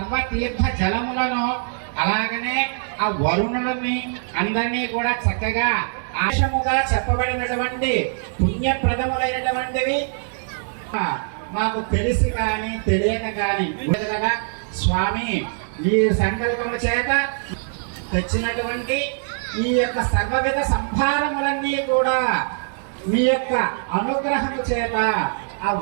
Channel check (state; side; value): silent; left; digital silence